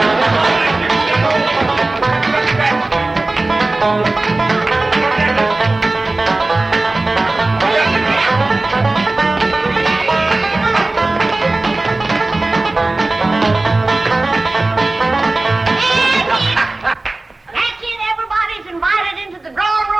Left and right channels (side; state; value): left; quieter; 3.0 dB